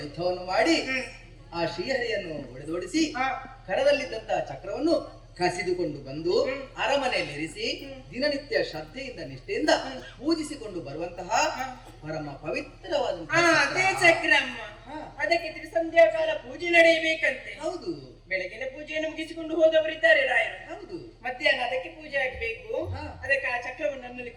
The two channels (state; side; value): identical; both; correlation 1.00